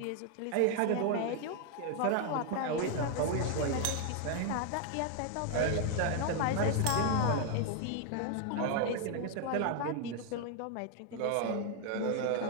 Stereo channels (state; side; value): different; both; correlation 0.00